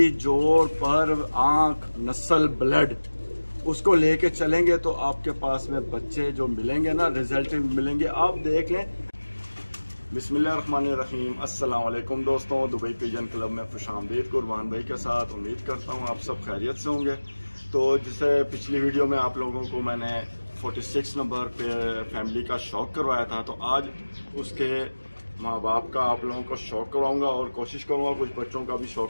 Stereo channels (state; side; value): inverted; both; correlation -1.00